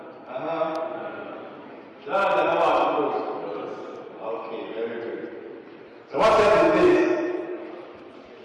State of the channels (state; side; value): identical; both; correlation 1.00